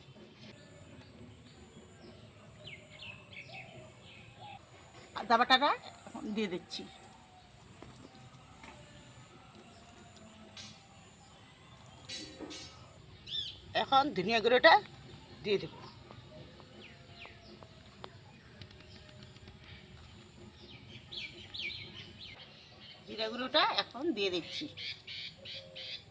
আদা বাটাটা এখন দিয়ে দিচ্ছি। এখন ধনিয়া গুঁড়োটা দিয়ে দেব। জিরা গুঁড়োটা এখন দিয়ে দিচ্ছি।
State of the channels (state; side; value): identical; both; correlation 1.00